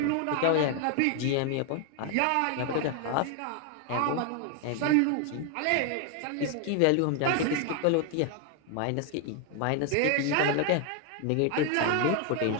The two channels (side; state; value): both; different; correlation 0.00